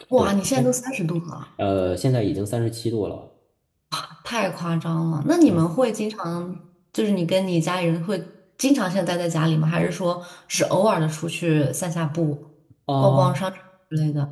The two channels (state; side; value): identical; both; correlation 1.00